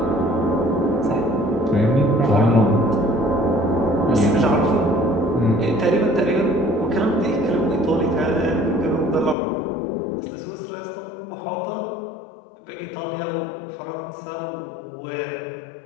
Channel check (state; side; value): drops out; right; at 9.3 s